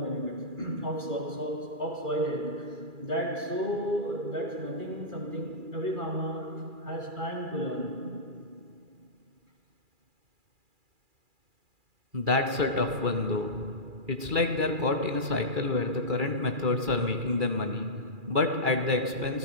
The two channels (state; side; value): late; left; 2.4 ms